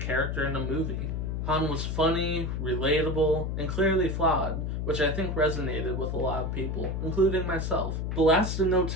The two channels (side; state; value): left; noise; hum, 2 dB below the sound